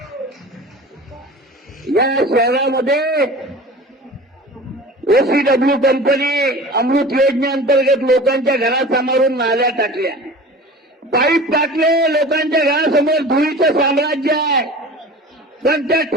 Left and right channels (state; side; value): normal; both; correlation 0.38